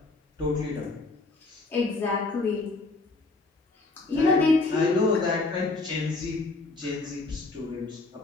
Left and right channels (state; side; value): quieter; right; 3.4 dB